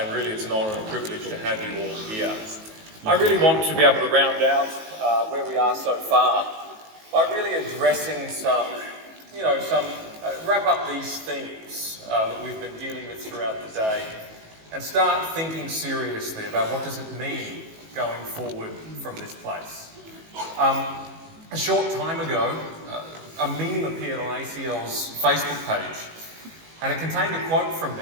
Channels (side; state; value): left; late; 19 ms